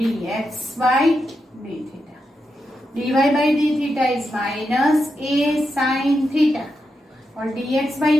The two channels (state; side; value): normal; both; correlation 0.86